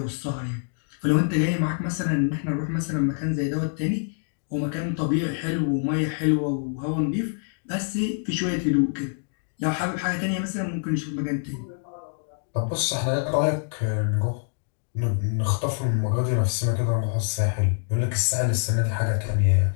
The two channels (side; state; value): right; silent; digital silence